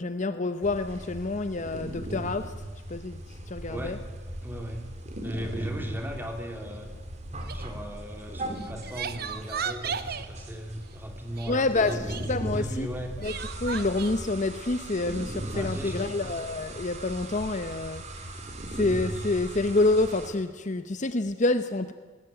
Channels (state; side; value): normal; both; correlation 0.40